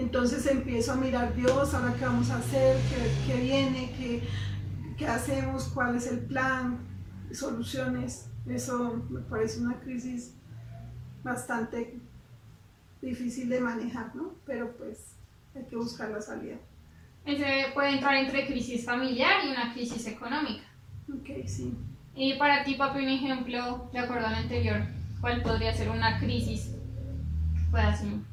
empiezo a mirar, Dios, ahora qué vamos a hacer, qué viene, qué hacemos, cuál es el plan, soluciones. Eso me parece una crisis bastante difícil de manejar, ¿no? Pero pues hay que buscar la salida. Ese puede entrar entre crisis familiar y una crisis económica. Ok, sí. Y para ti, papi, un ejemplo, de acuerdo al anterior, ¿cuál podría ser una crisis? Puedas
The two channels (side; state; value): both; identical; correlation 1.00